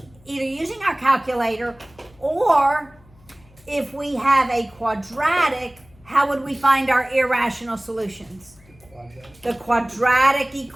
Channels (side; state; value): left; noise; hum, 27 dB below the sound